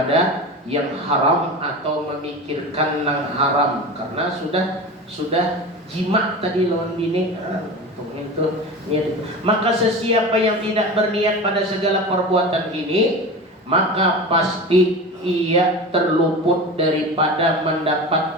yang haram atau memikirkan yang haram karena sudah jima tadi lawan bini. Itu niat. Maka sesiapa yang tidak berniat pada segala perbuatan ini, maka pasti ia terluput daripada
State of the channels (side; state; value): both; normal; correlation 0.30